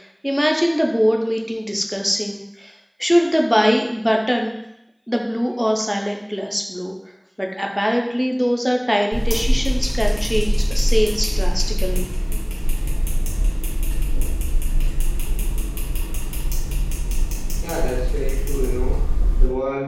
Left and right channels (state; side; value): identical; both; correlation 1.00